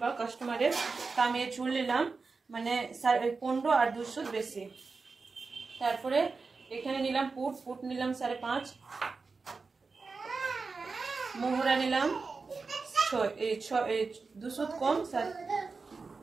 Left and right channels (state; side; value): quieter; left; 4.4 dB